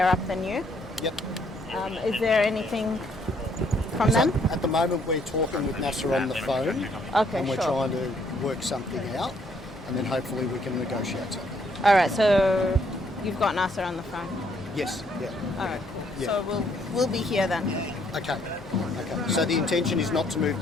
up than you. Yep. Is there anything from them? At the moment we're talking with Nasser on the phone. Okay, and we're sure. trying to work something out, and then hopefully we can negotiate something. All right, so you've got Nasser on the phone. Yes. Yeah. All right, cool. Yeah. So we'll be here then. Okay. So the intention is not to move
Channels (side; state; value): both; normal; correlation 0.68